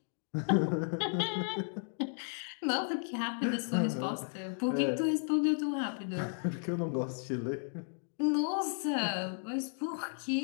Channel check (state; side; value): silent; right; 55 dB below the other